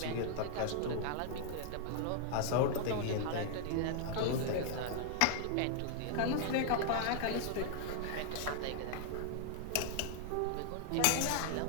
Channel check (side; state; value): both; different; correlation -0.01